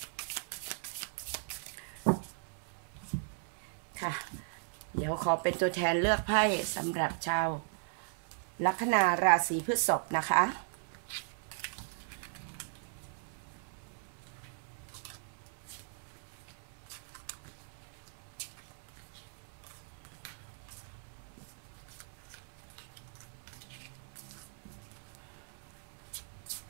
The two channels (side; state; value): left; silent; 53 dB below the other